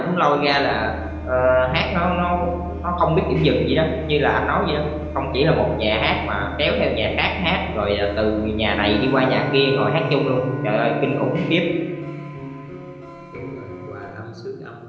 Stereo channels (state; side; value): identical; both; correlation 1.00